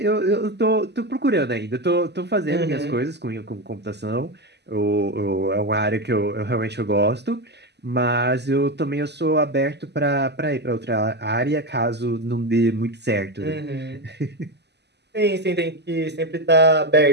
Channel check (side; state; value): left; late; 0.50 ms